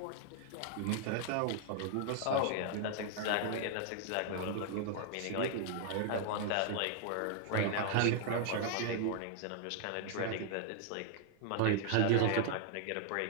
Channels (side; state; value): both; different; correlation 0.00